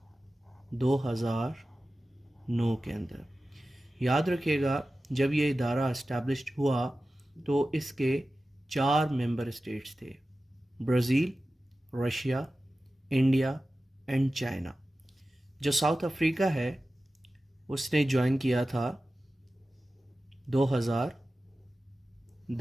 2009 के अंदर। याद रखिएगा, जब ये इदारा इस्टेब्लिश्ड हुआ तो इसके 4 मेंबर स्टेट्स थे: Brazil, Russia, India and China. जो साउथ अफ्रीका है उसने ज्वाइन किया था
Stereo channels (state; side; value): normal; both; correlation 0.95